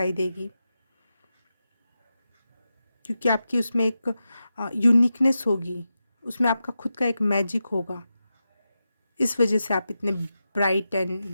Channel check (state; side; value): inverted; both; correlation -0.90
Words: देगी, क्योंकि आपकी उसमें एक यूनिकनेस होगी, उसमें आपका खुद का एक मैजिक होगा। इस वजह से आप इतने bright and